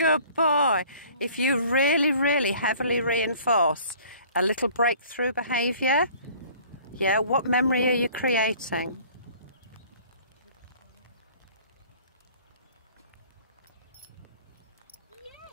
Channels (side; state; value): both; inverted; correlation -0.51